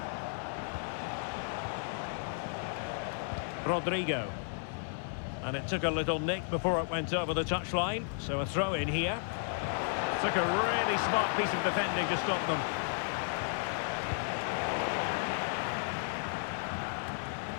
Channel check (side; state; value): right; silent; digital silence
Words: Rodrigo. And it took a little nick before it went over the touchline. So a throw in here. Took a really smart piece of defending to stop them.